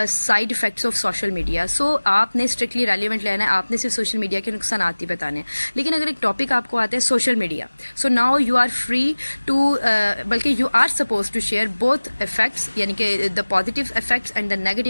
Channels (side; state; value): both; inverted; correlation -1.00